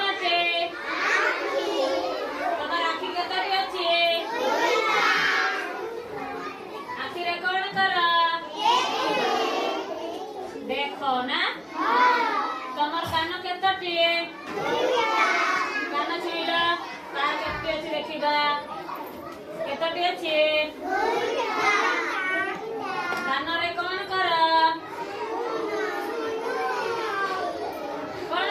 আছে? তোমার আখি কতটি আছে? আখিরে কোন কর? দেখো না। তোমার কান কতটি? কান ছিল তার কতটি আছে দেখিবা। কতটি আছে? কানরে কোন কর? কোন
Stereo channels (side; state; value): both; identical; correlation 1.00